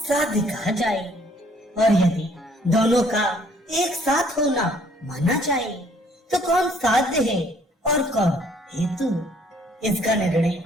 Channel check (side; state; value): both; normal; correlation 0.61